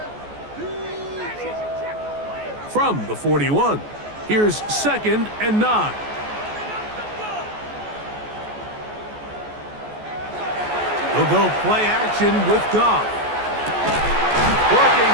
From the 41, here's 2nd and 9. They'll go play action with Goff. Working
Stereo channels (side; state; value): left; late; 14 ms